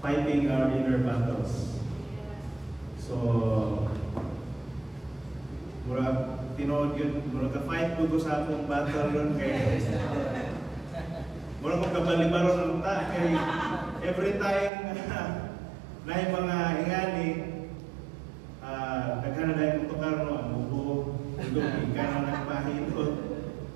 fighting our inner battles. So murag tinood yun, murag ka-fight ko sa akong battle yun kay murag kong kabalibaron ng ta kay every time na yung mga ingani naghanap dahil mutukar no, ang buko ilong ikan na nagpahilot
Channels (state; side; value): drops out; left; at 14.7 s